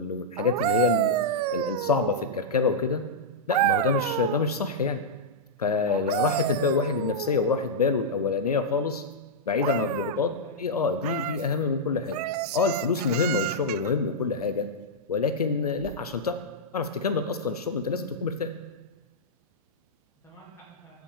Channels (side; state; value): both; normal; correlation -0.07